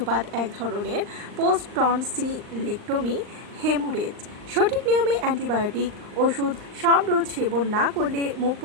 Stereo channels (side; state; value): left; late; 39 ms